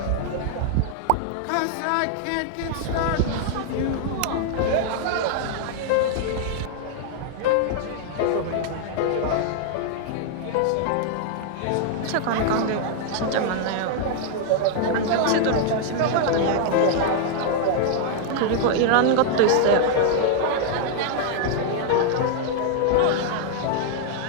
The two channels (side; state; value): both; different; correlation 0.00